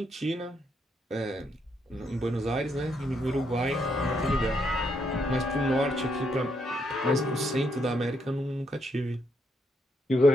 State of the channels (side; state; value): both; normal; correlation 0.76